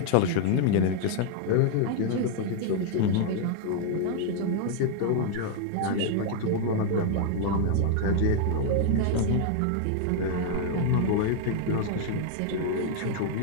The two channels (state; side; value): different; both; correlation 0.00